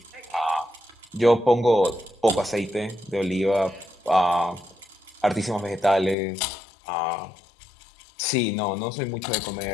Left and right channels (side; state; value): right; drops out; at 6.2 s